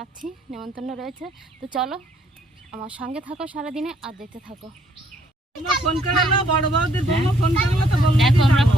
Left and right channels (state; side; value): normal; both; correlation 0.67